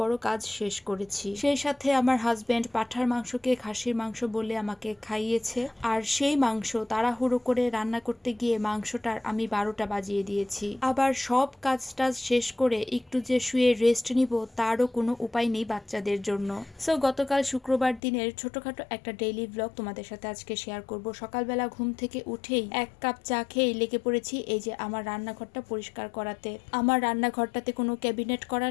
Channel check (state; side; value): drops out; right; at 18.0 s